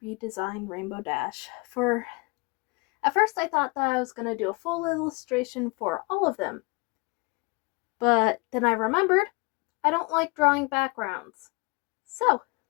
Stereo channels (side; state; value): right; quieter; 29.1 dB